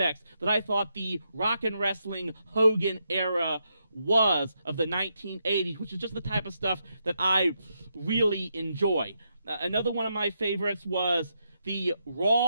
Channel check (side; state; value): both; inverted; correlation -0.81